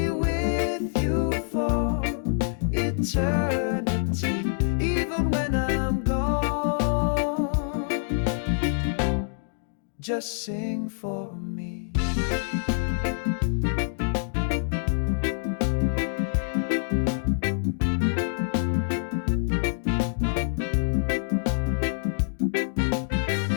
with you for eternity. Even when I'm gone, just sing for me.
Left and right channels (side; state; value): right; silent; digital silence